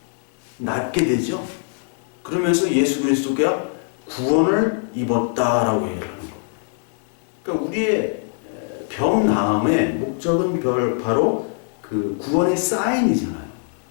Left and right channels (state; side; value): silent; right; 64 dB below the other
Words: 낫게 되죠. 그러면서 예수 그리스도가 구원을 입었다라고 얘기하는 거. 그러니까 우리의 병 나음의 목적은 바로 그 구원의 사인이잖아요.